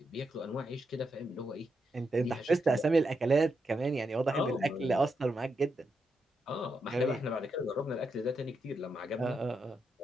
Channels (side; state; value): both; normal; correlation 0.83